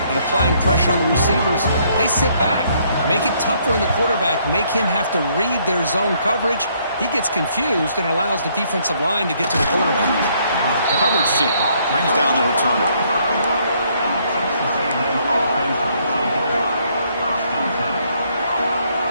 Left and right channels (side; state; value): both; inverted; correlation -0.68